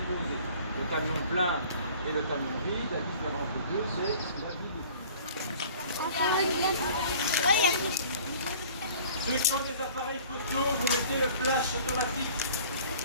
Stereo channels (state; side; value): inverted; both; correlation -0.48